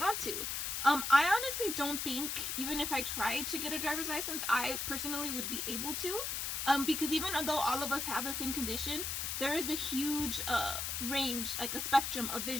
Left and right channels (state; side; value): noise; left; hiss, 2 dB below the sound